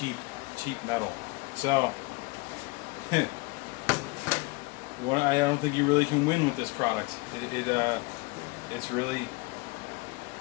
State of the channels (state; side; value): quieter; right; 26.5 dB